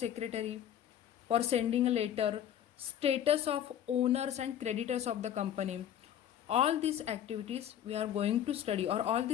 for sending a letter, status of owners and creditors of the company. All these activities we are going to study, or all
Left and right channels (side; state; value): right; quieter; 10.3 dB